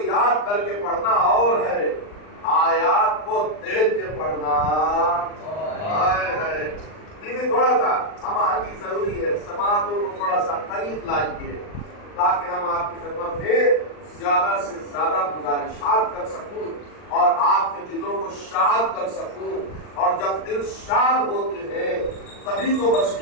یاد کر کے پڑھنا اور ہے، آیات کو دیکھ کے پڑھنا ہے۔ تھوڑا سا ہم آگے ضروری ہے، سماعتوں کو تھوڑا سا قریب لائیے تاکہ ہم آپ کی خدمت میں زیادہ سے زیادہ گزارشات کر سکوں اور آپ کے دلوں کو شاد کر سکوں. اور جب دل شاد ہوتے ہیں تبھی تو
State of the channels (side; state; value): right; late; 39 ms